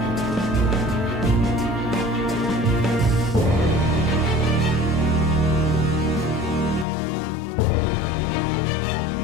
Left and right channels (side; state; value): right; drops out; at 6.9 s